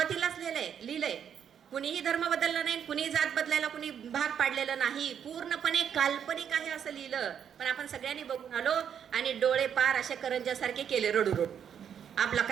लिहिलंय कुणीही धर्म बदलला नाही, कुणी जात बदलायला कुणी भाग पाडलेला नाही, पूर्णपणे काल्पनिक आहे असं लिहिलं. पण आपण सगळ्यांनी बघून आलो आणि डोळे पार असे करंजासारखे केले रडू रडू, आपला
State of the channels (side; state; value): left; quieter; 8.4 dB